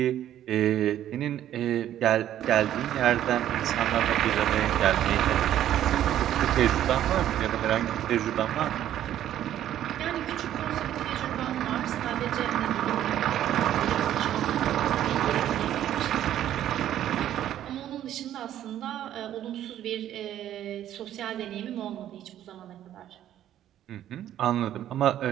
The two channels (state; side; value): quieter; left; 11.7 dB